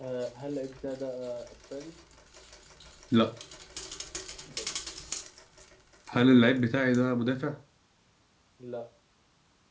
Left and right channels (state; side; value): identical; both; correlation 1.00